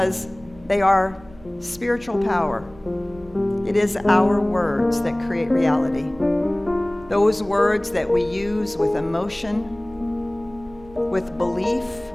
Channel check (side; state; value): right; noise; hum, 22 dB below the sound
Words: they are spiritual power. It is our words that create reality. Those words that we use with emotion, with belief,